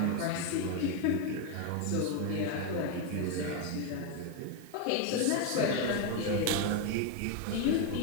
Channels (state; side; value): different; both; correlation 0.01